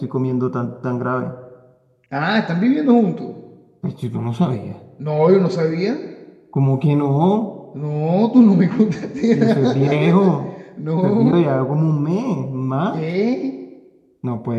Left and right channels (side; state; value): both; identical; correlation 1.00